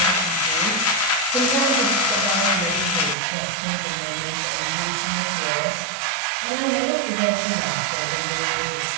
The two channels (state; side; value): drops out; left; at 3.2 s